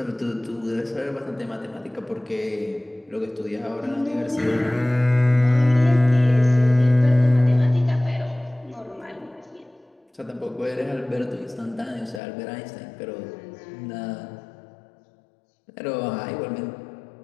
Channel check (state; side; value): drops out; right; at 12.2 s